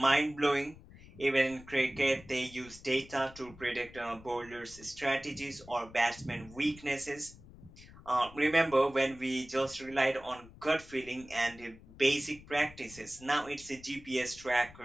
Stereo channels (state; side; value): noise; left; rumble, 20 dB below the sound